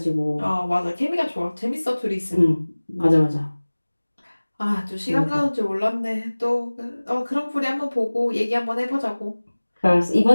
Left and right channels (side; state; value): both; inverted; correlation -1.00